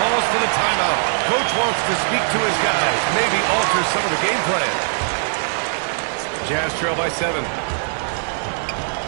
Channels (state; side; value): silent; left; digital silence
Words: for the timeout. Coach wants to speak to his guys, maybe alter some of the game plan. Jazz trail by 7.